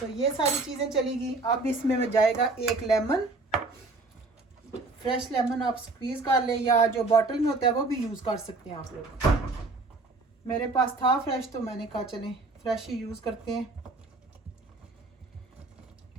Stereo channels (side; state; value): left; quieter; 3.3 dB